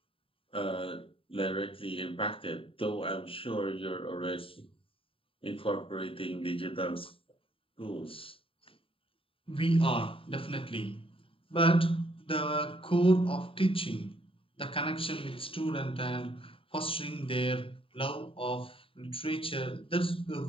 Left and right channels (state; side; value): late; right; 0.26 ms